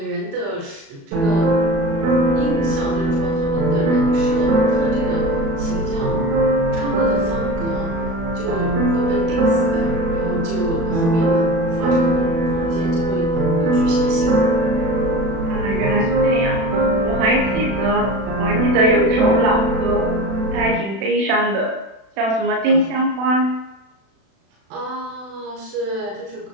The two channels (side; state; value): left; late; 36 ms